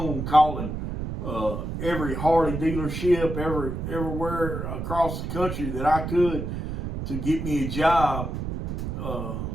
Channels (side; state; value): right; noise; rumble, 5 dB below the sound